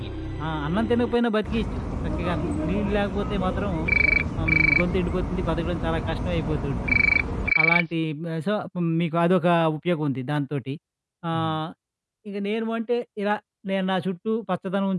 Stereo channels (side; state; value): both; identical; correlation 1.00